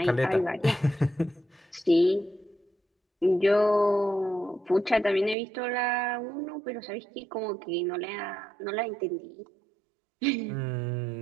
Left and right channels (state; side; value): drops out; left; at 5.4 s